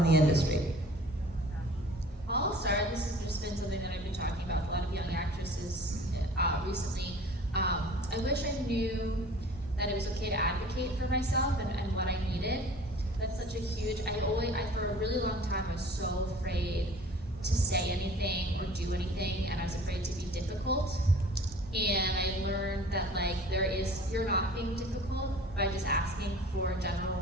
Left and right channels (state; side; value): normal; both; correlation 0.46